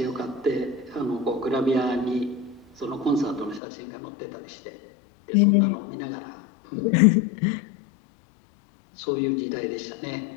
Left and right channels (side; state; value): right; drops out; at 3.6 s